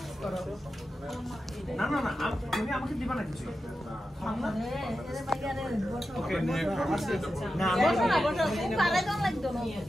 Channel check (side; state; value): both; normal; correlation 0.90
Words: না না না, তুমি আমাকে দিবা না কিছু। ওকে না বসো না, বসো, খুব আগে দাও লাগতো না।